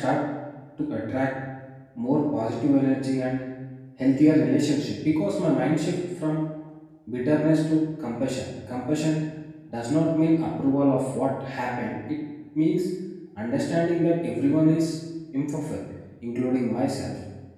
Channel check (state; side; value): identical; both; correlation 1.00